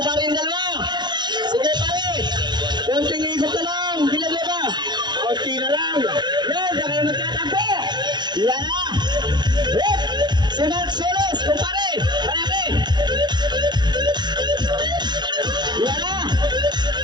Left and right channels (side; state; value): left; late; 0.21 ms